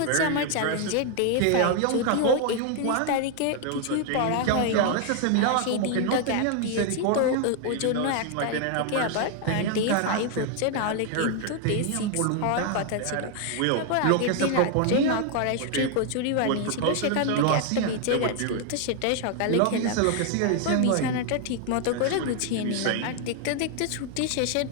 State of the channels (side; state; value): both; different; correlation 0.00